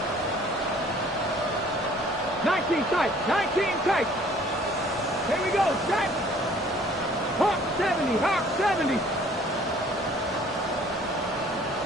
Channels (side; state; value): both; normal; correlation 0.55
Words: Tight, 19 tight. Here we go, set. Hawk 70, Hawk 70.